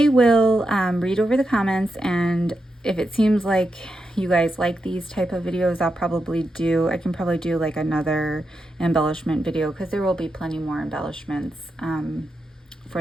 will read over the comments, and if it seems like you guys like these type of videos, I can probably do like another embellishment video, because there will be plenty more embellishments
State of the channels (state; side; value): normal; both; correlation 0.86